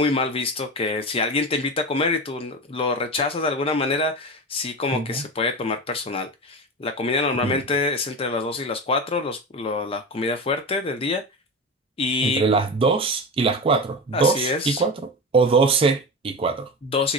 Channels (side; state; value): both; normal; correlation 0.24